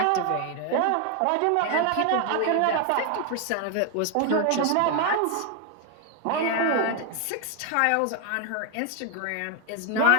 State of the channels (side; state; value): both; different; correlation 0.01